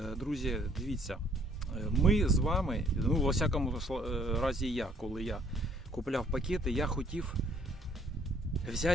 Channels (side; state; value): both; normal; correlation 0.62